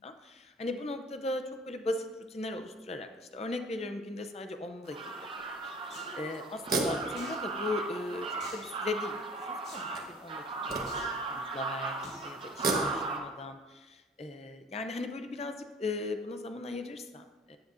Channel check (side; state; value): both; normal; correlation 0.48